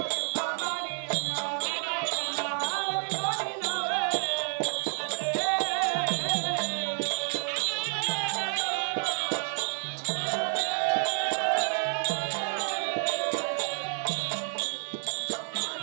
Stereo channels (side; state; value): left; silent; digital silence